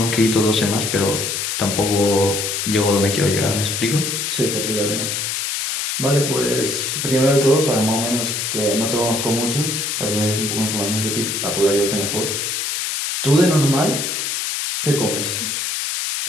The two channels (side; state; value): left; noise; hiss, 2 dB below the sound